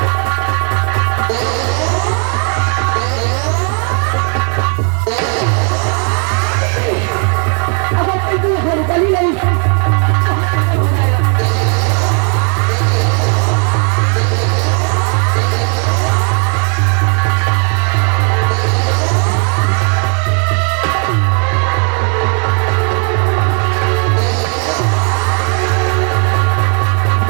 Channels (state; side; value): quieter; left; 39.5 dB